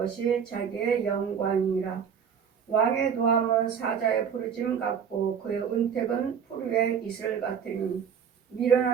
자기의 영광이니라. 왕의 노함은 사자의 부르짐 같고 그의 은택은 풀 위에 이슬 같으니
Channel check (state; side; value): quieter; left; 7.4 dB